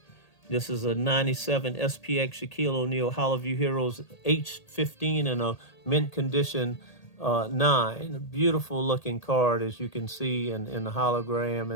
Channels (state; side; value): late; right; 1.8 ms